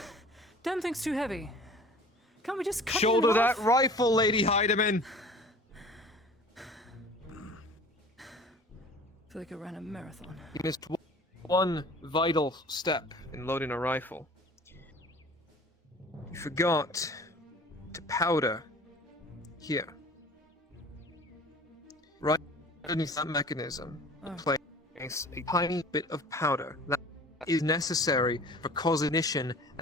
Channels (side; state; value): both; normal; correlation 0.44